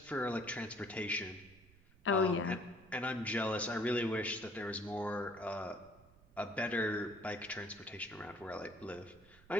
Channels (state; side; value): noise; right; rumble, 25 dB below the sound